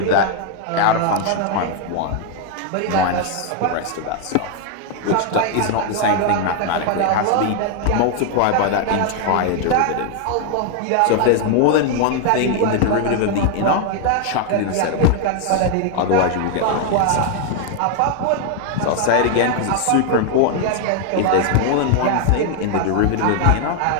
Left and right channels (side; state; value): both; different; correlation 0.00